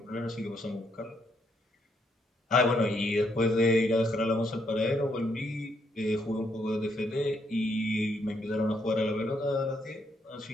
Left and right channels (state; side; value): normal; both; correlation 0.74